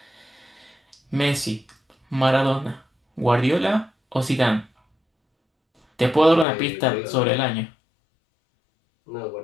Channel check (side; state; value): right; drops out; at 6.5 s